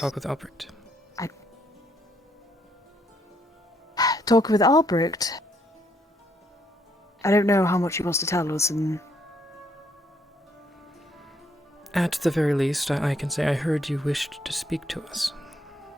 with Albrecht. Talking with Albrecht. I don't know how much he wants to tell us, and At the very least, I can say I heard you wished to speak to us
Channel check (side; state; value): both; normal; correlation 0.71